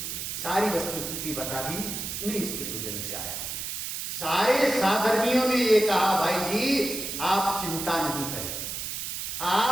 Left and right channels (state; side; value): noise; right; hiss, 5 dB below the sound